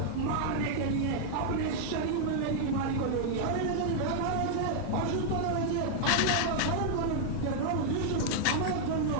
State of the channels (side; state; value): both; different; correlation -0.01